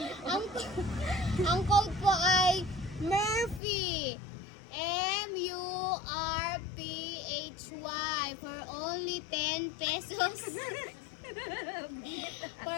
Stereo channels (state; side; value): drops out; right; at 3.6 s